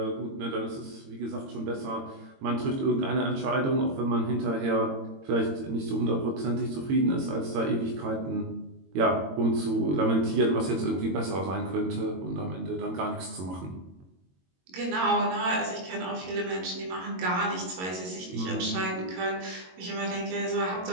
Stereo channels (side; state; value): left; late; 22 ms